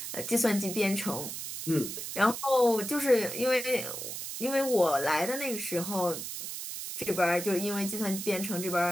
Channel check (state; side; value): noise; right; hiss, 7 dB below the sound